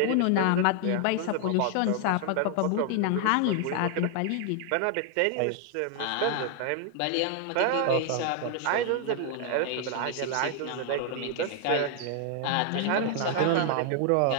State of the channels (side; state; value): both; different; correlation 0.00